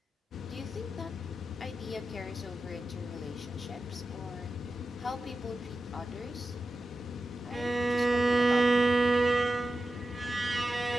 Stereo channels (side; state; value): both; normal; correlation 0.92